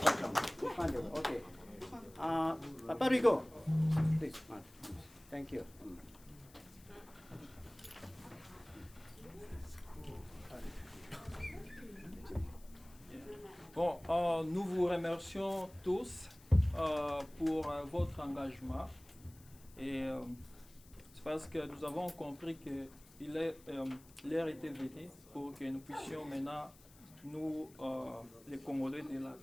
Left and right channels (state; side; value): noise; left; hiss, 24 dB below the sound